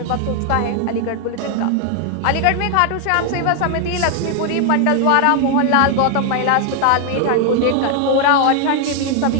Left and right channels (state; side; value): different; both; correlation 0.00